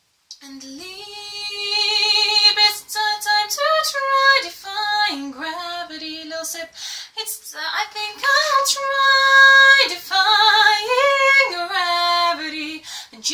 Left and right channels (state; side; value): identical; both; correlation 1.00